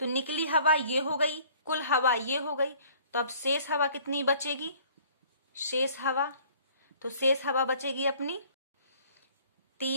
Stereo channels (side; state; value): both; inverted; correlation -0.54